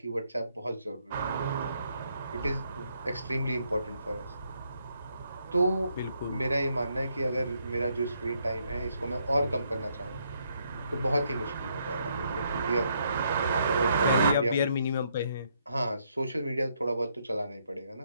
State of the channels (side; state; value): both; inverted; correlation -0.74